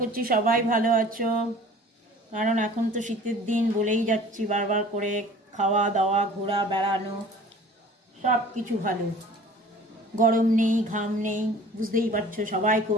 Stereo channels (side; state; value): both; normal; correlation 0.47